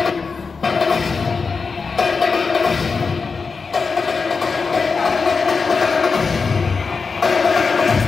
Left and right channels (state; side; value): quieter; right; 4.9 dB